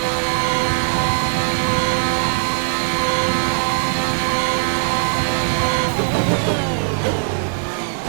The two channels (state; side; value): silent; left; digital silence